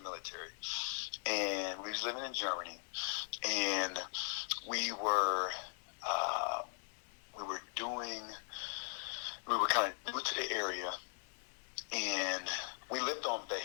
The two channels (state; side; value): silent; right; 51 dB below the other